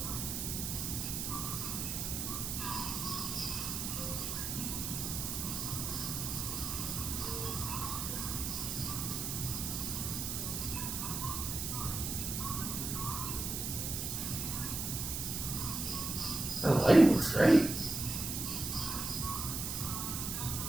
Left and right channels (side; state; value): right; noise; hiss, 3 dB below the sound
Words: The lighting looks great.